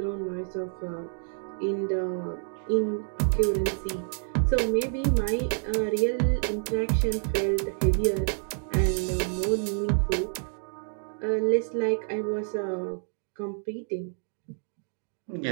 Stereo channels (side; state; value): left; silent; 59 dB below the other